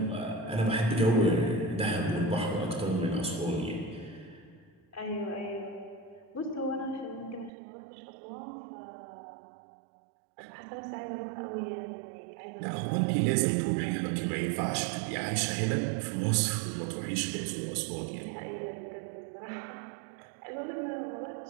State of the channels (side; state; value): left; drops out; at 7.5 s